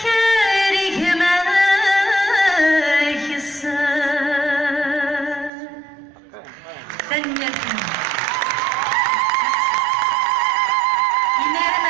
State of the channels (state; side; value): drops out; left; at 5.5 s